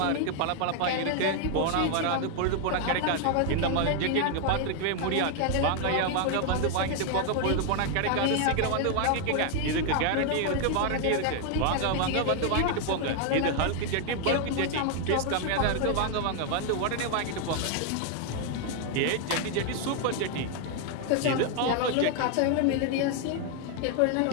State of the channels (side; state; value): both; different; correlation 0.00